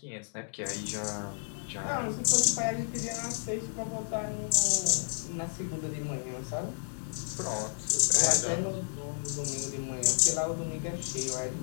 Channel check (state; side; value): silent; right; digital silence